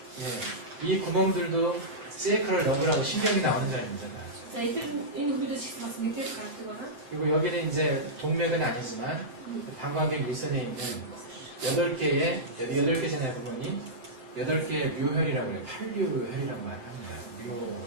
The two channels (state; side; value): late; left; 7.7 ms